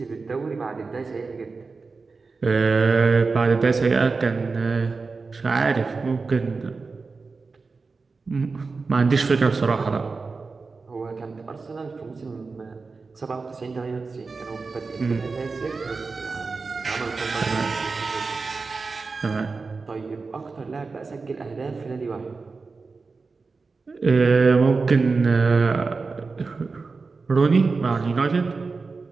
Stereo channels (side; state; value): left; quieter; 4.3 dB